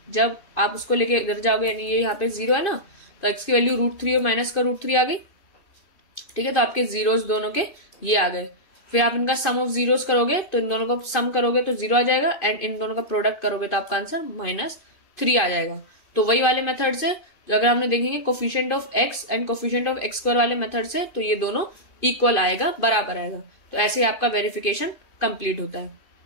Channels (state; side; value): late; right; 2.8 ms